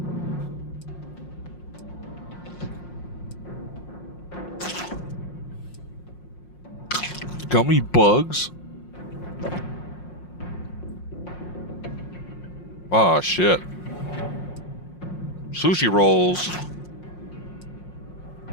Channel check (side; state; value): right; late; 5.6 ms